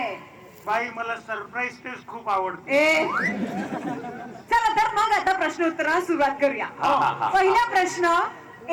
बाई, मला सरप्राईज टेस्ट खूप आवडते. चला तर मग आता प्रश्नोत्तराला सुरुवात करूया. पहिला प्रश्न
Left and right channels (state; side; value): identical; both; correlation 1.00